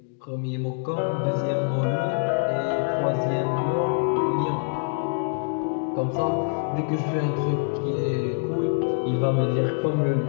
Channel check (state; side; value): silent; right; digital silence